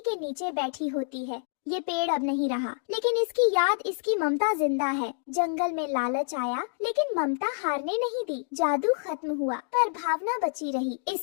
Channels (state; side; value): silent; right; digital silence